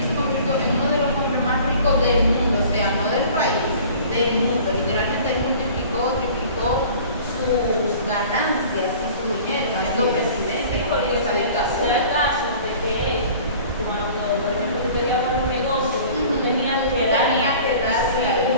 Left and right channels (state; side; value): inverted; both; correlation -0.46